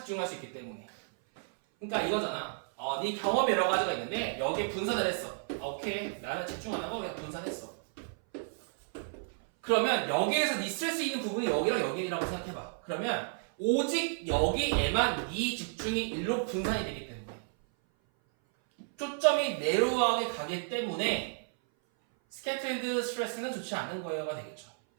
수 있기 때문에 그러니까 이거잖아 네 경험이 여러 가지가 있는데 여기에 분산을 했어 오케이 나는 집중 안 하고 그냥 분산했어 그러면 여기에서 네 스트레스 있는 부분이 여기랑 여기라고 생각해봐 그러면 오직 여기에만 네 집중이 일로 분산이 되기 때문에 초점이 내로하게 가기 때문에 scattered stress는 좋지 않은 거여가 되겠죠.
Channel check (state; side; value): silent; left; 56 dB below the other